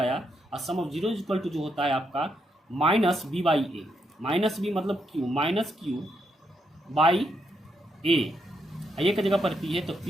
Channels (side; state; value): both; normal; correlation 0.79